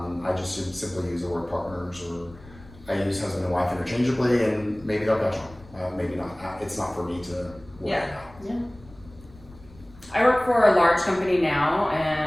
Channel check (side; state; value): left; noise; rumble, 22 dB below the sound